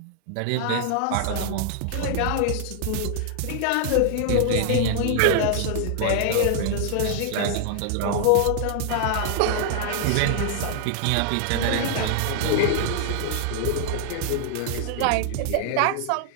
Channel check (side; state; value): both; different; correlation 0.00